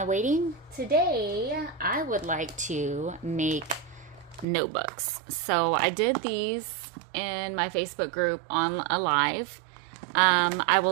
Waiting. Today, I would like to make notebooks. So I did these in my Facebook group on a live. I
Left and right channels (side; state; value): left; drops out; at 4.5 s